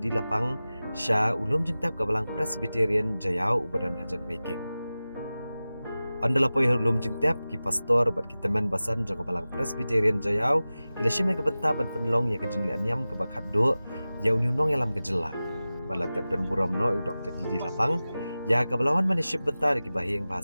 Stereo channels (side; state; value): both; inverted; correlation -0.96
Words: Lapang sya ulum jentap kabalang Presbyterian Jayau ubadan hajan making. Andala poi ulum jentap ki pastor bat ki teman basan jong kabalang Presbyterian Jayau ila sheme ke benta ban penlong ya ke jing le anyam ke Khatduh ya uniunong yalam ke jela. Bala tap dan Burom no Dr. Didi Lapang ya kabalawan maniship benta ki bahing